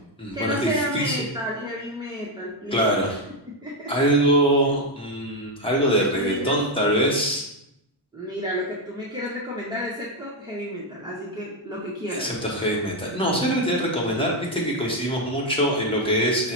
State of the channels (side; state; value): both; normal; correlation 0.05